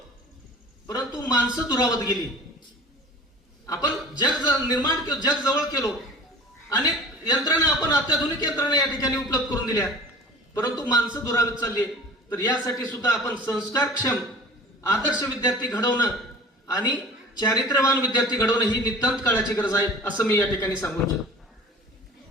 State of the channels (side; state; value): both; normal; correlation 0.43